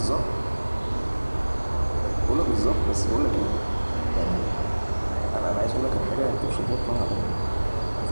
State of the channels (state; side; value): inverted; both; correlation -1.00